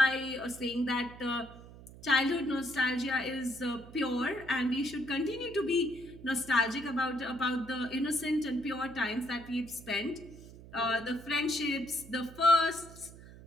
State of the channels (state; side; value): noise; right; hum, 18 dB below the sound